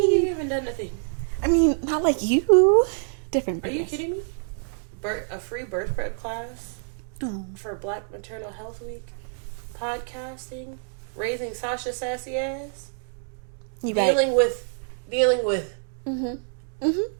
you haven't done nothing? I mean, not like you. Different. Are you kidding me? A free birth prep class for Black Maternal Health Week, podcasting, raising Sasha sassy ass, dealing with dealing with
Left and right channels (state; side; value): silent; left; digital silence